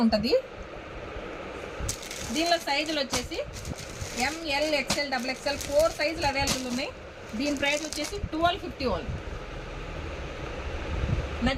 ఉంటుంది. దీనిలో సైజులు వచ్చేసి ML, XL, XXL 4 సైజులు అవైలబుల్ ఉన్నాయి. దీని ప్రైస్ వచ్చేసి 1250 ఓన్లీ.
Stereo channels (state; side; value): identical; both; correlation 1.00